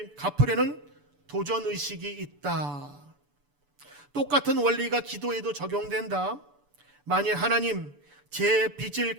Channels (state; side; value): late; left; 6.9 ms